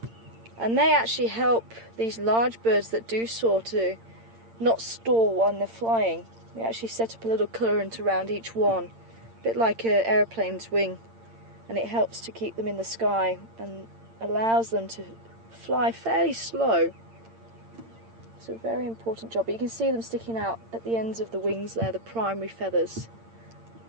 and they actually help these large birds that do soar to not stall when they're flying. They actually set up a little current around each one, a bit like an aeroplane's wing, and it helps to keep them in the sky and allows them to fly fairly slow. It's a very important job. But you can see them sticking out at the ends of the wings there, the primary feathers.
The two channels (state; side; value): late; left; 8.8 ms